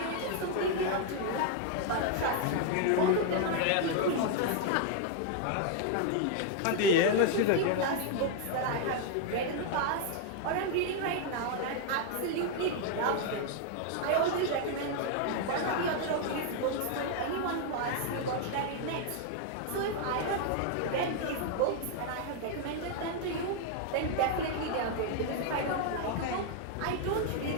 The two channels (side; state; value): both; different; correlation 0.00